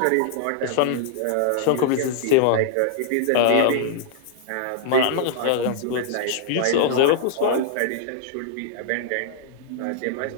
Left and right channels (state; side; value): different; both; correlation -0.01